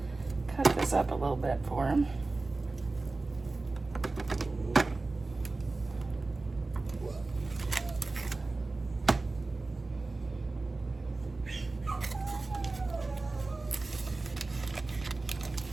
cut this up a little bit for him.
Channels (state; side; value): quieter; left; 3.4 dB